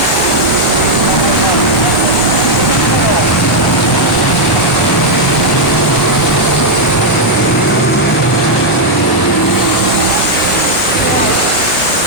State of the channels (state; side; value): normal; both; correlation -0.01